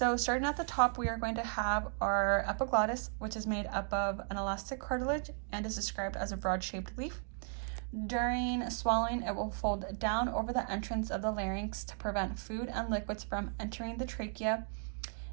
starting at the top, we are going to have our epiglottis, which is made up of an elastic cartilage and is described as a broad-shaped leaf. During swallowing, it will fold down over the entrance of the larynx to prevent food and liquids from entering the trachea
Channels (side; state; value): left; silent; 54 dB below the other